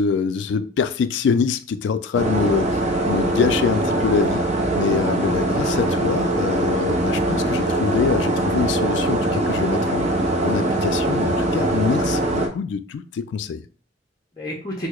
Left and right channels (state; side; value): normal; both; correlation 0.37